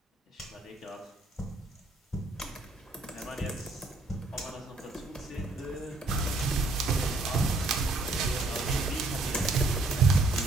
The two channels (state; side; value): quieter; left; 3.1 dB